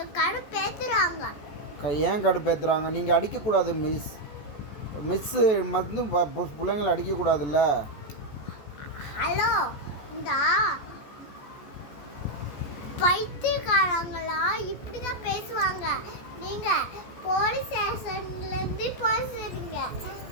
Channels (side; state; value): right; late; 14 ms